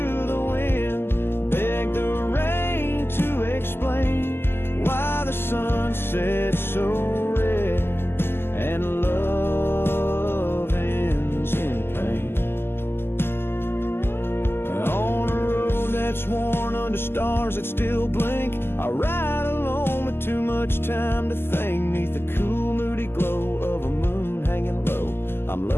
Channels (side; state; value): right; late; 0.11 ms